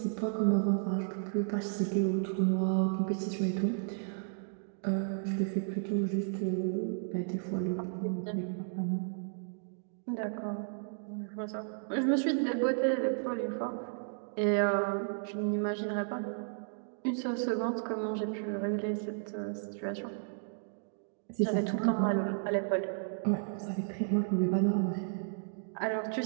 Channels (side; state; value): left; silent; digital silence